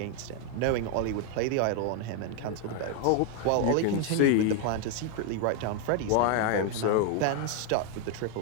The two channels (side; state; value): both; different; correlation 0.01